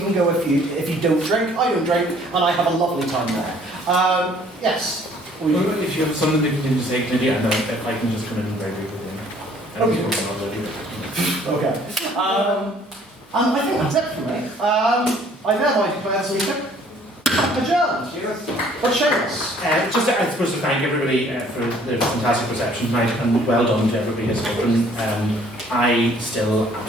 go if you don't drink. I don't drink, and I have a lovely time there. Yes. Well, if you have something that you can just say, maybe I know if I can just come in very quickly. Okay. And I think that's it for me. I thereby declare this meeting adjourned. But Seamus. Just, I suppose, to thank everybody for the fantastic reception tonight, and well done to everybody who's spoken. I still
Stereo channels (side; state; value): both; normal; correlation 0.58